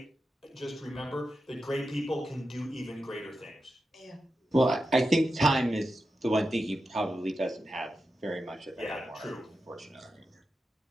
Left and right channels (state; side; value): normal; both; correlation 0.90